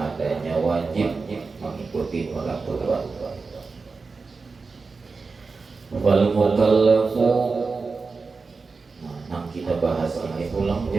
wajib mengikuti peraturan. Wal mukallafu, yang kita bahas ini ulang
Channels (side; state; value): left; quieter; 4.4 dB